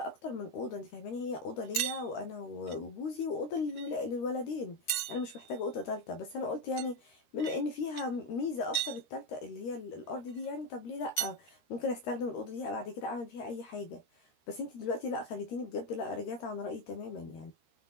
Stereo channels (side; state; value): right; late; 13 ms